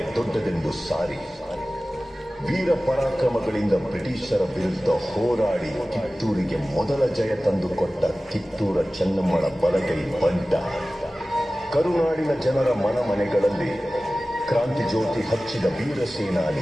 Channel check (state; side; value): normal; both; correlation 0.96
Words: ದೊಡ್ಡದೆಂದು ಸಾರಿ ವೀರ ಪರಾಕ್ರಮಗಳಿಂದ ಬ್ರಿಟಿಷರ ವಿರುದ್ಧ ಹೋರಾಡಿ ಕಿತ್ತೂರಿಗೆ ಮೊದಲ ಜಯ ತಂದುಕೊಟ್ಟ ಕಿತ್ತೂರ ಚೆನ್ನಮ್ಮಳ ಬಲಗೈ ಬಂಟ. ಕರುನಾಡಿನ ಜನರ ಮನಮನೆಗಳಲ್ಲಿ ಕ್ರಾಂತಿ ಜ್ಯೋತಿ ಹಚ್ಚಿದ ವೀರ